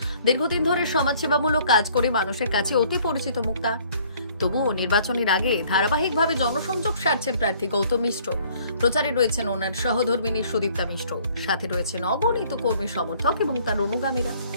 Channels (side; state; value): both; inverted; correlation -0.58